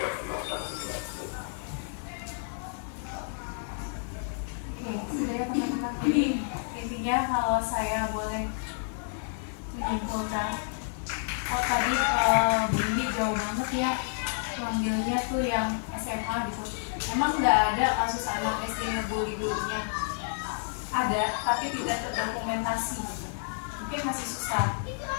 pelaksanaan berlaku. Sudah ya teman-teman. Intinya kalau saya boleh menyimpulkan, tadi Bu Indi jauh banget ya mengambil gurunya tuh yang SMA gitu. Emang nggak ada kasus anak SD ngebully gurunya, ada tapi tidak terdokumentasi gitu. Mungkin masih susah,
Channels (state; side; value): silent; right; digital silence